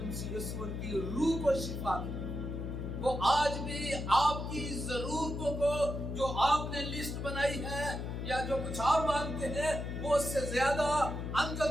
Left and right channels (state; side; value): noise; left; hum, 4 dB below the sound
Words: مسیح یسوع ان کی روح کو شفا دے۔ وہ آج بھی آپ کی ضرورتوں کو جو آپ نے لسٹ بنائی ہے یا جو کچھ آپ مانگتے ہیں وہ اس سے زیادہ